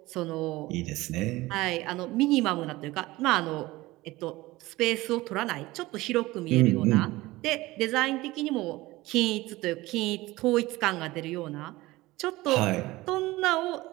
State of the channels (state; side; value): quieter; left; 19.3 dB